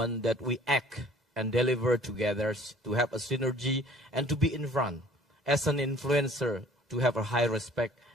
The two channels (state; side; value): normal; both; correlation 0.53